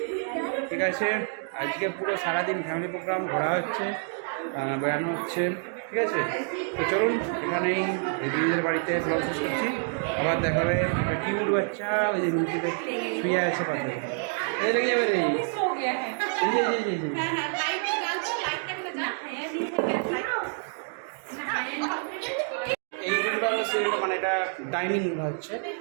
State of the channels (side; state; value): left; silent; 60 dB below the other